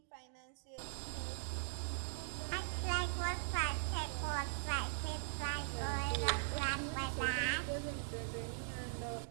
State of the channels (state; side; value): silent; left; digital silence